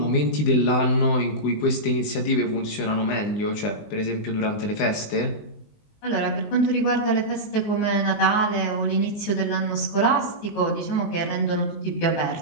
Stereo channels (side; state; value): right; late; 19 ms